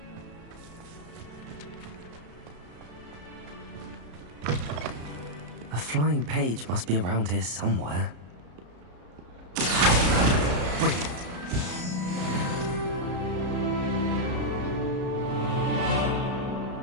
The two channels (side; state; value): left; late; 33 ms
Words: A flying page must be around here somewhere. Brilliant.